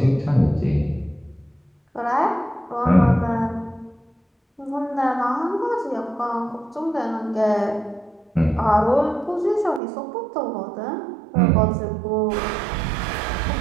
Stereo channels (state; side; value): drops out; left; at 9.8 s